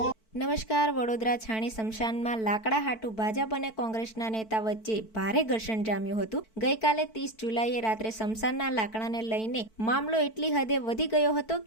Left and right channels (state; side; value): late; right; 4.5 ms